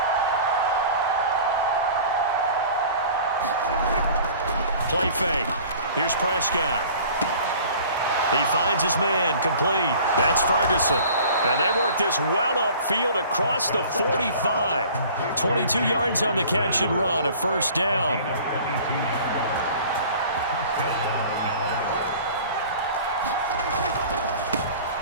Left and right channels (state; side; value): inverted; both; correlation -0.46